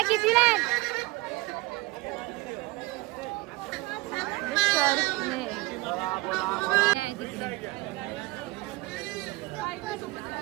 कितीला आहे? करणे आहे तिकडे.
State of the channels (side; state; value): left; quieter; 21.6 dB